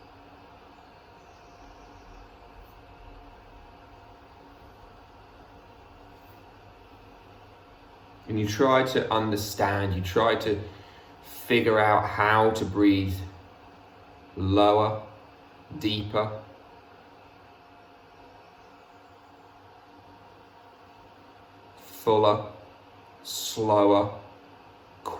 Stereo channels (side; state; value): both; identical; correlation 1.00